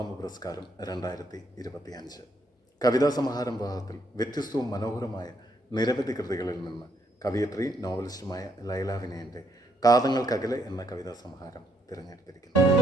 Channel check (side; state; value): both; normal; correlation 0.73